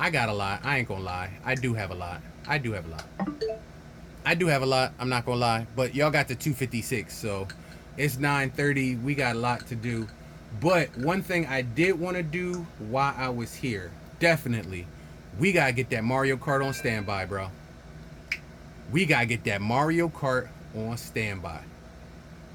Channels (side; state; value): both; identical; correlation 1.00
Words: got a lot. I ain't gonna lie. I do have a lot. I do have a lot. I do have a lot. I'm not gonna lie. But y'all got the 256, so it's 9:30. We got a lot to do. But one thing I did want to do while I was here, definitely, we gotta get that Mario Kart on standby, bro. We gotta get that Mario Kart on standby.